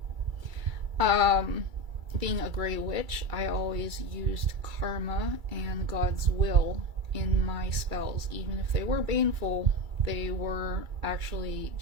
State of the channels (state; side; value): late; left; 2.3 ms